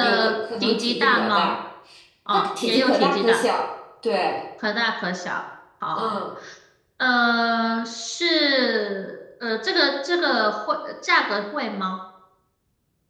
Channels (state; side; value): identical; both; correlation 1.00